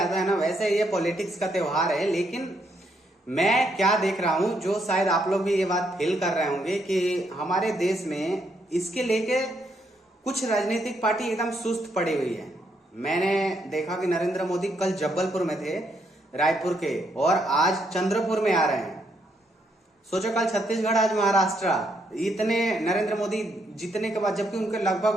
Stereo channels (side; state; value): both; normal; correlation 0.75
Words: है ना, वैसे ये पॉलिटिक्स का त्योहार है। लेकिन मैं क्या देख रहा हूं, जो शायद आप लोग भी ये बात फील कर रहे होंगे कि हमारे देश में इसके लेके कुछ राजनीतिक पार्टी एकदम सुस्त पड़ी हुई है। मैंने देखा कि नरेंद्र मोदी कल जबलपुर में थे, रायपुर के, और आज चंद्रपुर में आ रहे हैं। सोचो, कल छत्तीसगढ़, आज महाराष्ट्र। इतने नरेंद्र मोदी जीतने के बाद, जबकि उनके लगभग